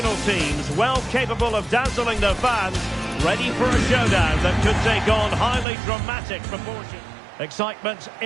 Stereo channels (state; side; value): drops out; left; at 5.7 s